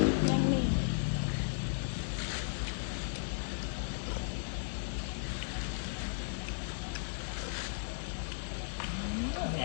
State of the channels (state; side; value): silent; right; digital silence